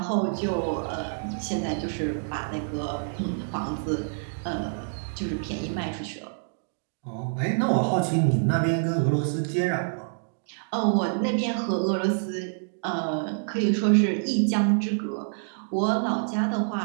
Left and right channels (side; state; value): left; silent; digital silence